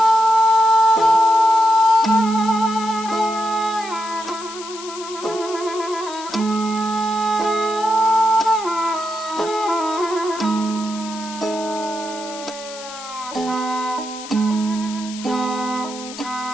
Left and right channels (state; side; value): noise; left; hiss, 14 dB below the sound